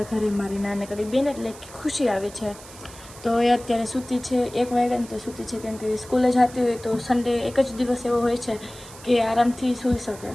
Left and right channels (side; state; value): right; noise; hiss, 18 dB below the sound